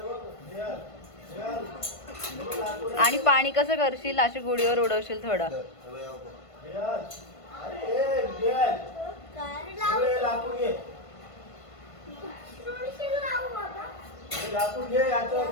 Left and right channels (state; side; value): late; right; 1.5 ms